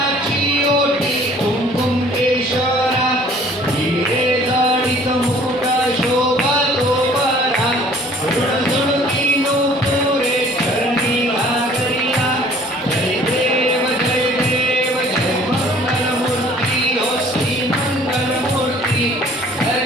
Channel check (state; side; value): normal; both; correlation 0.54